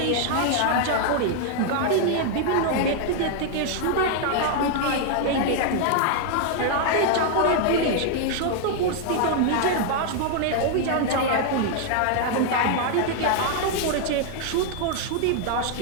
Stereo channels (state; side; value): different; both; correlation 0.00